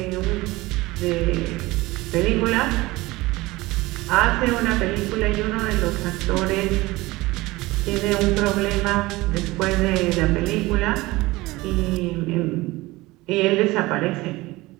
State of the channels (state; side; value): quieter; left; 20.3 dB